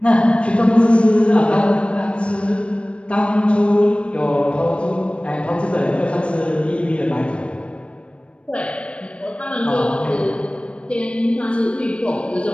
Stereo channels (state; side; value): late; right; 0.059 ms